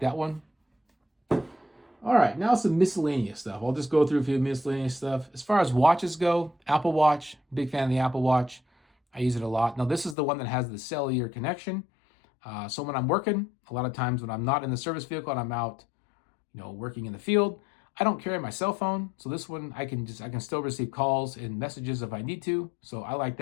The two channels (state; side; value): drops out; right; at 10.2 s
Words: one. All right, now some miscellaneous stuff. I'll just go through a few miscellaneous stuff. As far as watches go, Apple Watch, big fan of the Apple Watch. I use it a lot. Now, this is the one that has the cellular connection. So when I'm working, a lot of times when I'm not in the service vehicle and I'm out, working in the field, I don't carry my cell phone. So this one, I can still receive calls and messages if I need to. So I like